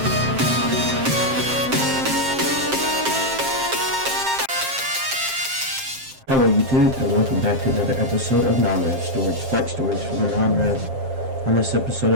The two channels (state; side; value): late; left; 7.5 ms